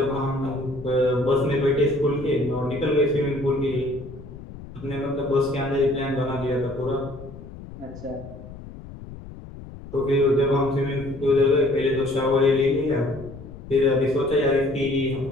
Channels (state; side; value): noise; left; rumble, 15 dB below the sound